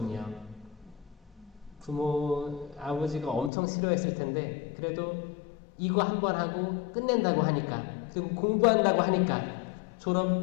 아버지가 엄청 싫어했을 텐데 그래도 이거 한 번 하고 끝낸다고 하니까, 그리고 공부한다고 하니까 졸업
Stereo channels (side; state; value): right; drops out; at 3.5 s